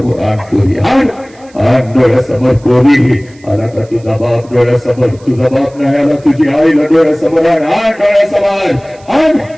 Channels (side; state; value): right; noise; hiss, 29 dB below the sound